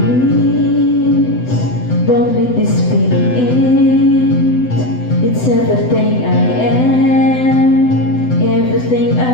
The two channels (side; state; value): right; late; 7.9 ms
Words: let this feeling end. It's everything I am, everything